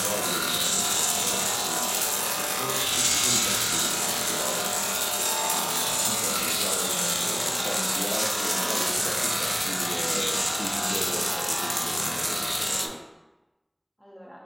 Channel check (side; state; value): both; identical; correlation 1.00